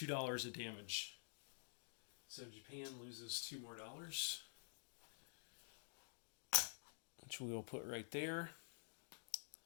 of damage. So Japan loses $2 more, which we will put right there.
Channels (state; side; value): silent; right; digital silence